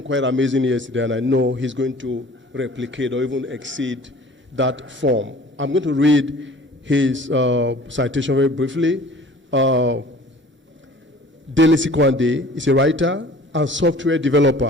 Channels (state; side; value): normal; both; correlation 0.48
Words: quite amazing yesterday, and I know he's going to replicate or even exceed that form. I'm going to read his citation very briefly. Dele Sikwande is a writer and software